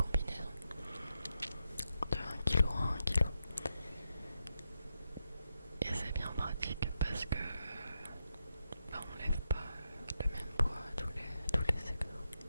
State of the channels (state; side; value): inverted; both; correlation -0.84